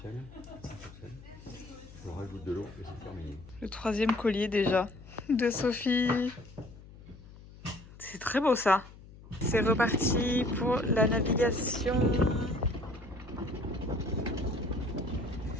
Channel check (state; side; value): noise; left; hum, 19 dB below the sound